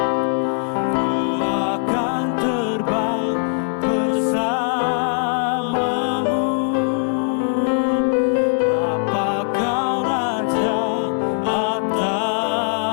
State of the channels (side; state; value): right; silent; 55 dB below the other